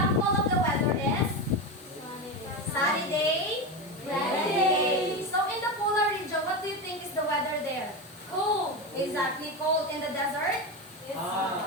of the weather is sunny day, rainy day. So in the polar region, what do you think is the weather there? Cool. Exactly, cold. In the desert? It's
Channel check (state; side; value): normal; both; correlation 0.18